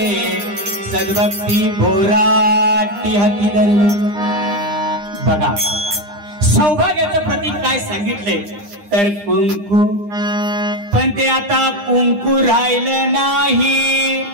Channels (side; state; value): left; late; 9.8 ms